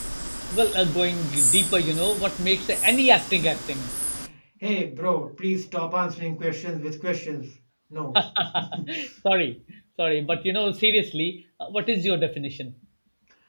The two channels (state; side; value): inverted; both; correlation -1.00